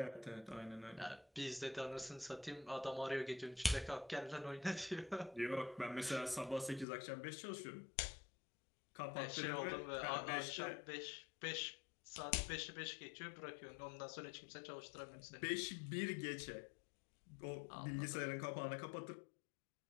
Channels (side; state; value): right; drops out; at 6.9 s